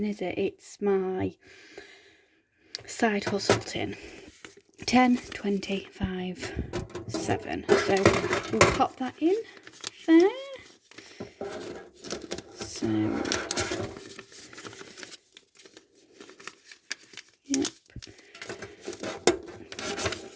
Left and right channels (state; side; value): identical; both; correlation 1.00